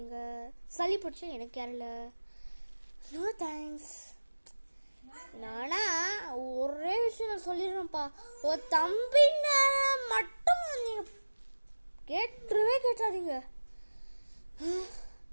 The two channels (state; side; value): inverted; both; correlation -1.00